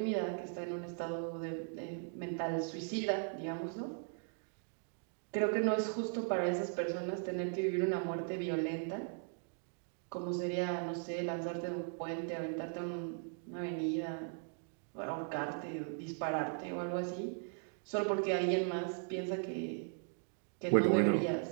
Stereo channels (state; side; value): silent; left; 52 dB below the other